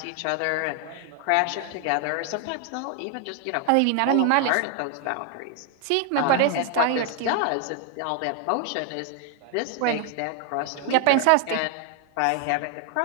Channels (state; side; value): different; both; correlation 0.00